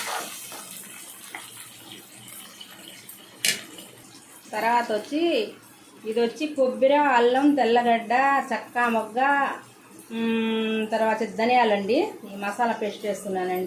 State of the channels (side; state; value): both; identical; correlation 1.00